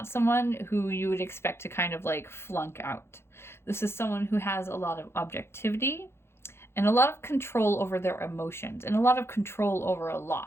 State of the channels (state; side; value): late; right; 0.12 ms